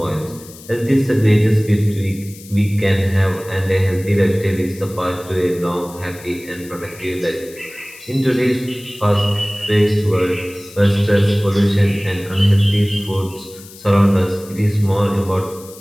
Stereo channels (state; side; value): noise; left; hiss, 19 dB below the sound